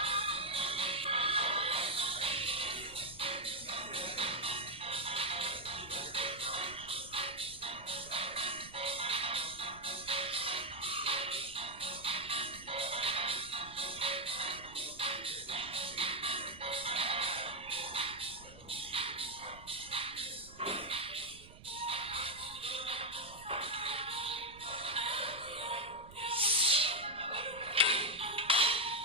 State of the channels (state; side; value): noise; right; rumble, 20 dB below the sound